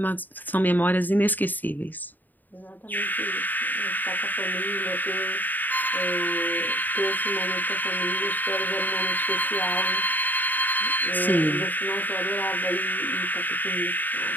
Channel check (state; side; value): late; right; 0.087 ms